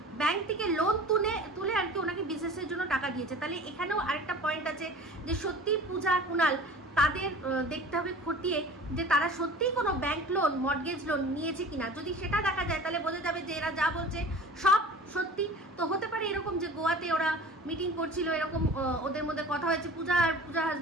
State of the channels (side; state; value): both; normal; correlation 0.41